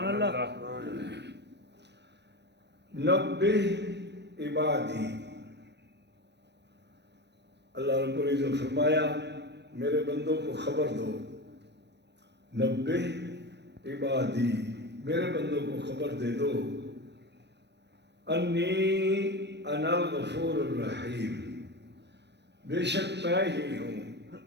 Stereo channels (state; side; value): late; left; 0.50 ms